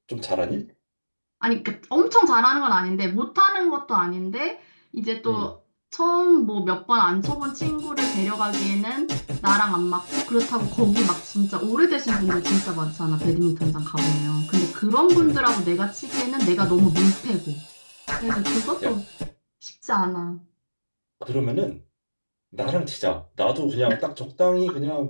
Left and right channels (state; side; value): inverted; both; correlation -1.00